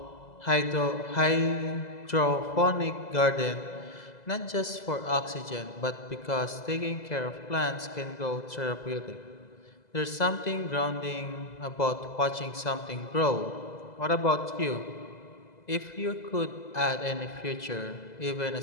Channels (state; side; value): late; right; 2.0 ms